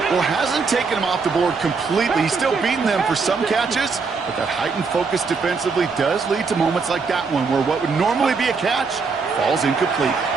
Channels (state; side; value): quieter; left; 4.8 dB